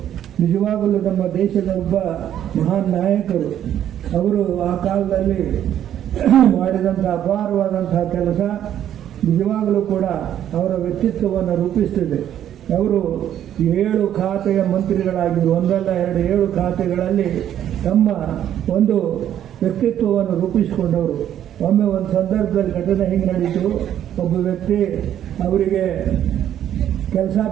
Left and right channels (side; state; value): left; quieter; 10.7 dB